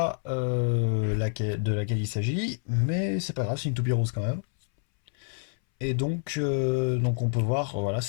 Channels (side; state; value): right; silent; 60 dB below the other